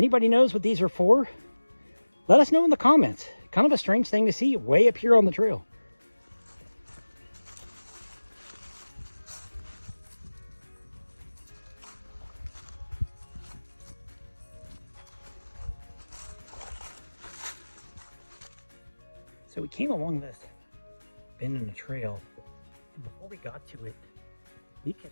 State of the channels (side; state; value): both; inverted; correlation -1.00